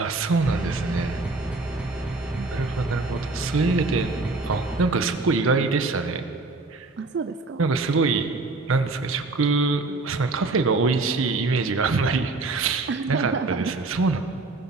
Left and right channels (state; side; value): quieter; left; 3.4 dB